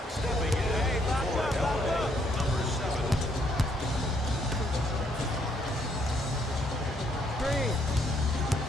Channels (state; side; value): normal; both; correlation 0.71